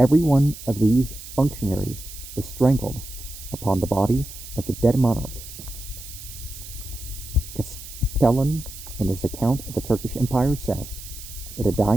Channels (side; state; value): right; noise; hiss, 14 dB below the sound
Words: one of these functionaries was strangled upon the body of the dead monarch. Castellan, in his account of the Turkish Empire, says that a